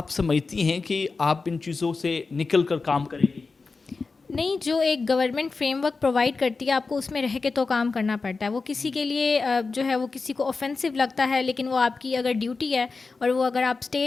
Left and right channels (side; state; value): right; quieter; 4.2 dB